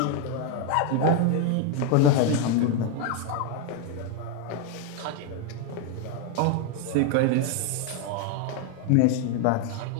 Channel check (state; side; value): different; both; correlation 0.01